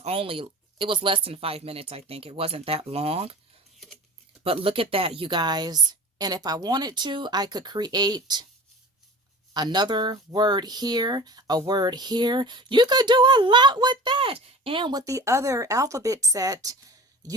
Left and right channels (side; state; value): both; normal; correlation 0.38